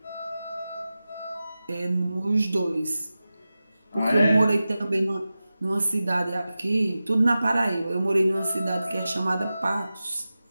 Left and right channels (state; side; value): inverted; both; correlation -0.94